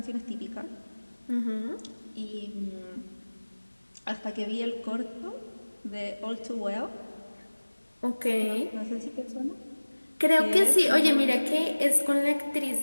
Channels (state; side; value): inverted; both; correlation -1.00